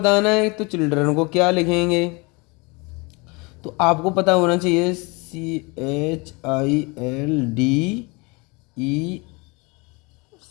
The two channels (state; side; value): quieter; right; 27.9 dB